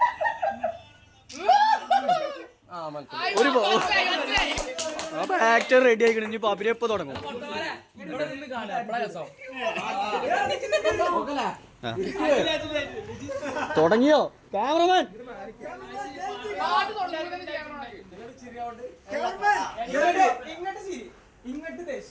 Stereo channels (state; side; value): identical; both; correlation 1.00